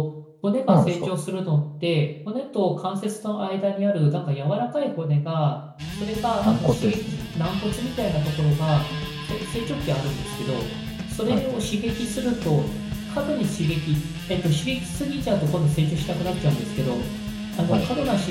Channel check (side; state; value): both; identical; correlation 1.00